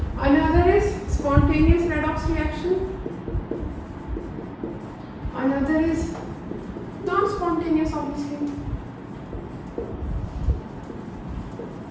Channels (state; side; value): identical; both; correlation 1.00